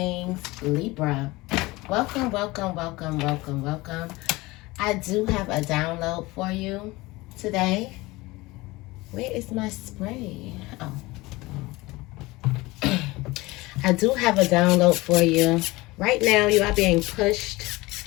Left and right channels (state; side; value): quieter; right; 21.3 dB